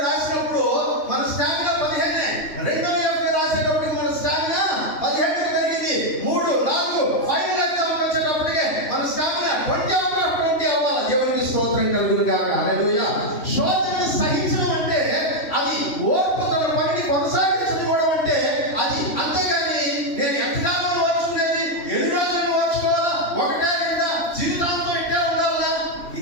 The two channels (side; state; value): right; late; 3.1 ms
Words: రాసినప్పుడు మన స్టామినా 15, రెండవ FA రాసేటప్పుడు మన స్టామినా 17 పెరిగింది. 3, 4 ఫైనల్ ఎగ్జామ్ వచ్చేటప్పటికే మన స్టామినా 20 అవ్వాలి. దేవునికి స్తోత్రం కలుగును గాక. హల్లెలూయా. శోధనను సహించడం అంటే అది ఓర్పు తన పనిని కొనసాగించడం అంటే అది. అంతేగాని నేను ఎంతకాలం ఓర్చుకునేది, ఎన్ని రోజులు ఓర్చుకోవాలా, 1-2 జీవితాంతం ఇట్టే ఉండాలా,